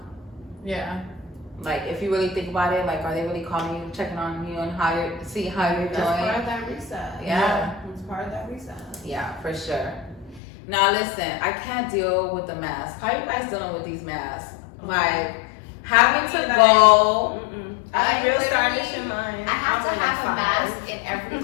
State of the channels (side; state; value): right; drops out; at 10.4 s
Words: Yeah. Like, if you really think about it, like, are they really calling you, checking on you, and how you're doing? That's part of that reset. Yeah. It's part of that reset. Yeah, for sure. Now listen, I can't deal with the mask. How you guys dealing with these masks? Like, having to go. I'm real stylish in mine. I have to have a mask in every,